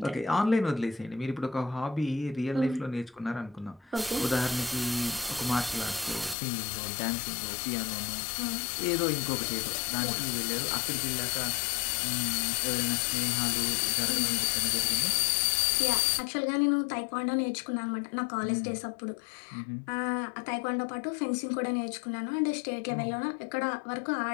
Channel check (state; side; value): drops out; right; at 6.4 s